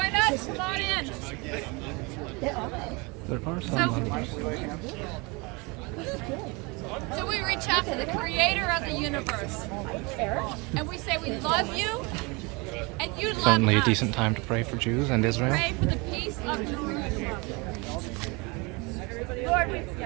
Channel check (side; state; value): left; quieter; 27.9 dB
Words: us, come on in. There are some. So we reach out to the creator of the universe. And we say we love you and you love Certainly a us. decent time to pray for Jews and Israel. Pray for the peace of Jerusalem. Lord, we